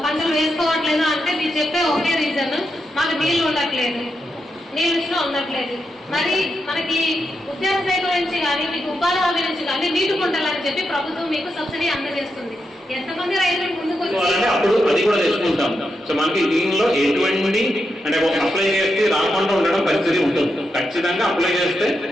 పంటలు వేసుకోవట్లేదు అంటే మీరు చెప్పే ఒకే రీజన్, మాకు నీళ్లు ఉండట్లేదు, నీళ్ళు ఉండట్లేదు. మరి మనకి ఉద్యాన శాఖ నుంచి కానీ మీకు ఉపాధి హామీ నుంచి కానీ నీటి కుంటలని చెప్పి ప్రభుత్వం మీకు సబ్సిడీ అందజేస్తుంది. ఎంతమంది రైతులు ముందుకు అప్పుడు అది కూడా తెచ్చుకుంటాం. సో మనకి దీనిలో ఎటువంటి అంటే అప్లై చేస్తే రాకుండా ఉండడం పరిస్థితి ఉంటుంది. ఖచ్చితంగా అప్లై చేస్తే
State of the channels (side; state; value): both; normal; correlation 0.85